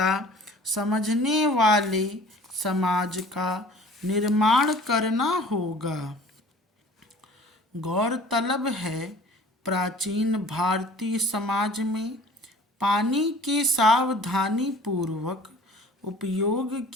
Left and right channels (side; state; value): both; normal; correlation 0.48